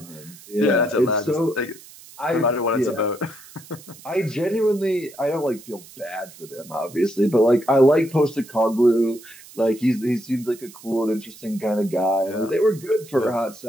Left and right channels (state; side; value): noise; right; hiss, 20 dB below the sound